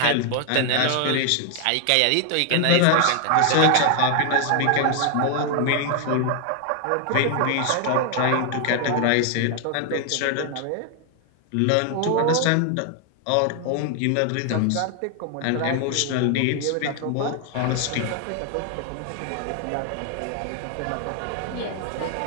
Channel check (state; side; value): different; both; correlation 0.00